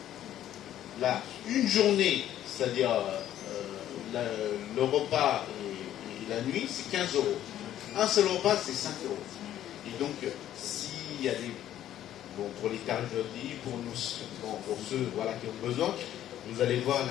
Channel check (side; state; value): right; quieter; 11.9 dB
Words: Là, une journée, c'est-à-dire le repas et la nuit, c'est 15 €. Un seul repas, c'est 5 €. Et donc, s'il y a des... Bon, pour les tarifs pour nous, pour ceux voilà, qui ont besoin, vous allez voir